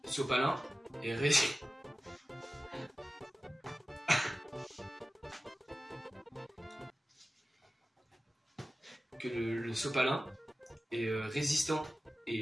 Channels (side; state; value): both; normal; correlation 0.96